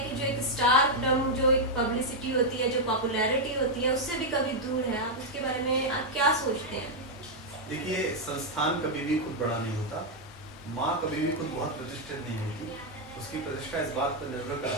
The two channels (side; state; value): both; normal; correlation -0.01